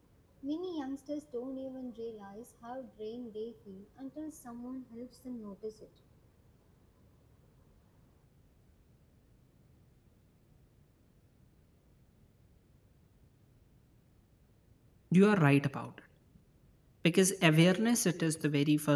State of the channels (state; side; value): identical; both; correlation 1.00